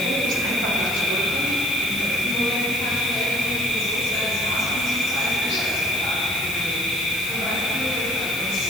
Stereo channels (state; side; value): noise; left; hiss, 11 dB below the sound